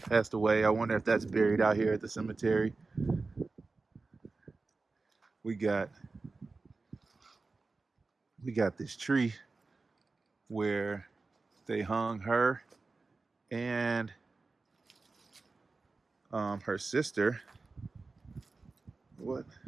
passed away, I wonder if that's buried out here at the cemetery. We got this tree where they hung her and her sister. What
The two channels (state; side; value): quieter; left; 3.8 dB